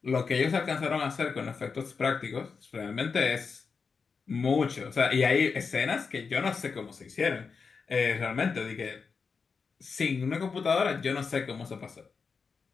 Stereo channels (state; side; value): quieter; right; 5.2 dB